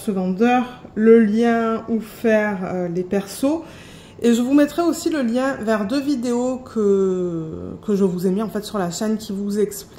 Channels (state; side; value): identical; both; correlation 1.00